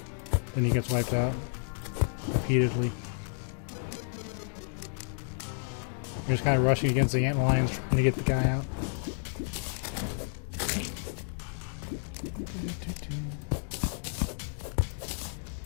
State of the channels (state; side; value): silent; right; digital silence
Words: then he gets wiped out repeatedly. You're just kind of rushing against the ant lions trying to get the guy out.